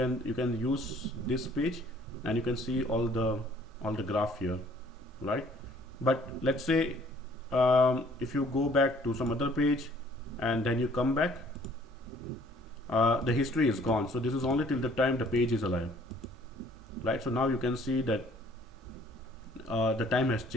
use this page, and you can see all the graph here, right? But let's say if you go back to some other page and then you come back, the history is gone. So this is only till the time the page is alive, right? So now you can see that the time has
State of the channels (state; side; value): normal; both; correlation 0.58